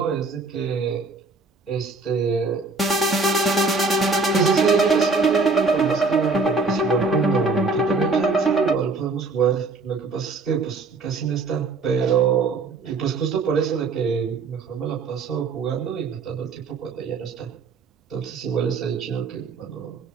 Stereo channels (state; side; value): quieter; left; 3.9 dB